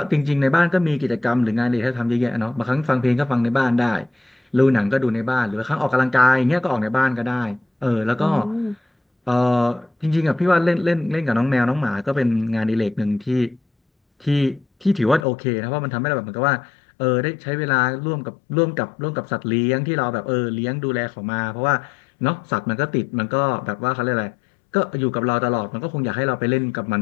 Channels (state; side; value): drops out; right; at 15.2 s